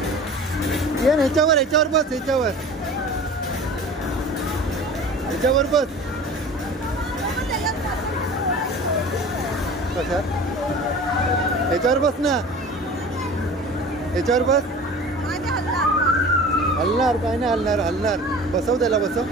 ह्याच्यावर ह्याच्यावर बस. ह्याच्यावर बस. कशा ह्याच्यावर बस ना. ह्याच्यावर बस. हलणार काय नाही. हलणार. बसव त्याला. बसव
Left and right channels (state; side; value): normal; both; correlation 0.40